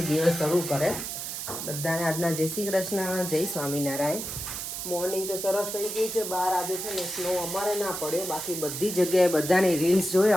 દિવસ શરૂ કરે. બધાને આજના જય શ્રી કૃષ્ણ, જય સ્વામિનારાયણ. મોર્નિંગ તો સરસ થઈ ગઈ છે. બહાર આજે છે ને સ્નો અમારે ના પડ્યો, બાકી બધી જગ્યાએ બધાની રીલ્સ જોઈ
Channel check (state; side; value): noise; right; hiss, 6 dB below the sound